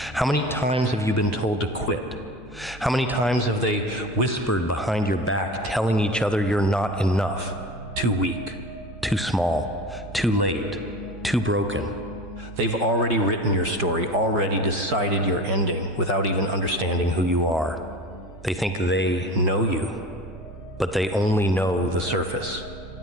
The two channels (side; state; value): both; normal; correlation 0.35